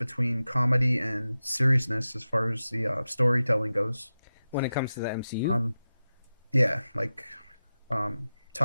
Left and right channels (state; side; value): inverted; both; correlation -0.93